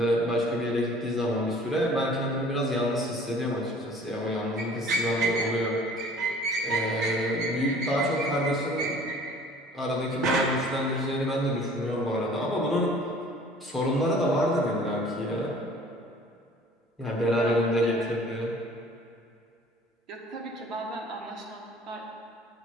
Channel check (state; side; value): normal; both; correlation 0.50